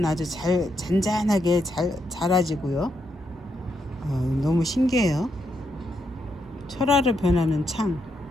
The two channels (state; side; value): normal; both; correlation 0.80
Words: 아주 잔잔하게 잘 자라지고요. 너무 신기해요. 철화로 변하는 창.